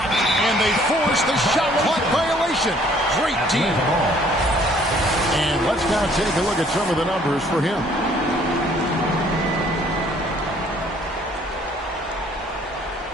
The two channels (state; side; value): normal; both; correlation 0.60